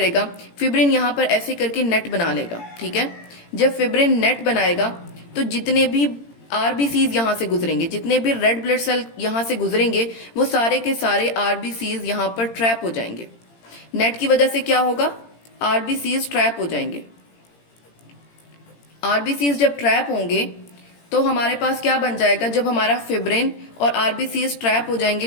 फिब्रिन यहां पर ऐसे करके नेट बना लेगा। ठीक है, जब फिब्रिन नेट बनाएगा तो जितने भी आरबीसीज यहां से गुजरेंगे, जितने भी रेड ब्लड सेल यहां से गुजरेंगे, वो सारे के सारे आरबीसीज यहां पर ट्रैप हो जाएंगे। नेट की वजह से क्या होगा, आरबीसीज ट्रैप हो जाएंगे। आरबीसीज जब ट्रैप होंगे तो हमारे पास क्या बन जाएगा, जब हमारा फिब्रिन और आरबीसीज ट्रैप हो जाएंगे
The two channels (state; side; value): late; right; 18 ms